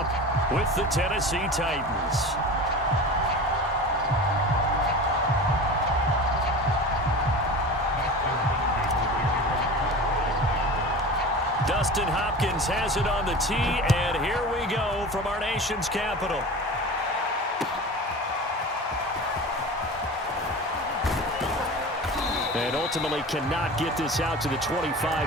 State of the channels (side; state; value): both; normal; correlation 0.33